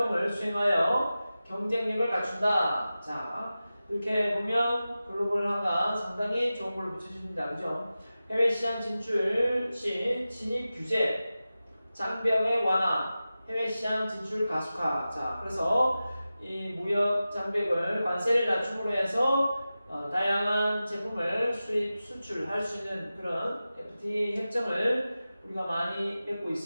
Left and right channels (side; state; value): both; inverted; correlation -0.94